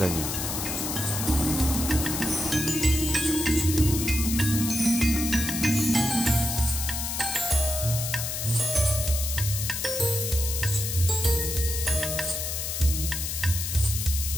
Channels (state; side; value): noise; left; hiss, 3 dB below the sound